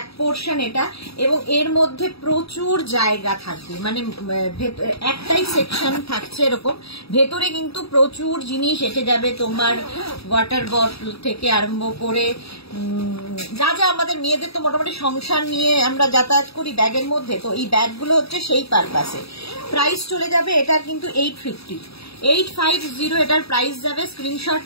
পোর্শন এটা, এবং এর মধ্যে প্রচুর জায়গা থাকবে, মানে একটাই সেকশন থাকছে এরকম। ভেতরে কিন্তু প্রচুর জিনিস এসে যাবে, তোমার ওয়াটার বটল থেকে আরম্ভ করে যা যা আমাদের মেয়েদের তো মোটামুটি সংসার নিয়ে আমরা যাতায়াত করি ব্যাগের মধ্যে, তো এই ব্যাগগুলো হচ্ছে সেই পারপাসে। প্রাইস চলে যাবে এটার কিন্তু 850 এটার প্রাইস যাবে। স্ক্রিনশট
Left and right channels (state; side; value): late; right; 0.77 ms